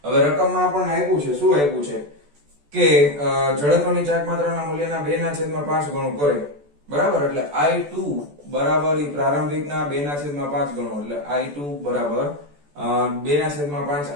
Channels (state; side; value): late; left; 14 ms